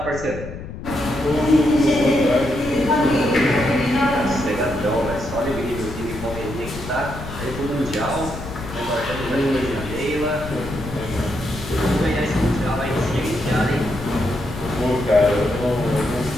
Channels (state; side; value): noise; left; rumble, 10 dB below the sound